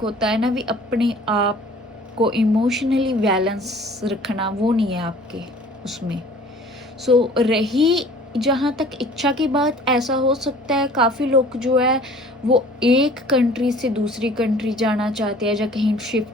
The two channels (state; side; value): normal; both; correlation 0.49